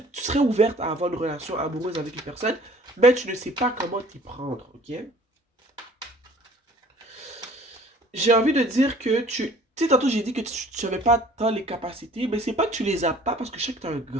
ouverte à avoir une relation amoureuse avec une personne, mais tu ne sais pas comment t'y prendre, ok? J'ai envie de dire que tu sais, tantôt j'ai dit que tu n'avais pas tant les capacités, mais c'est pas que tu les as pas parce que je sais que tu as un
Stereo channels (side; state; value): both; normal; correlation 0.52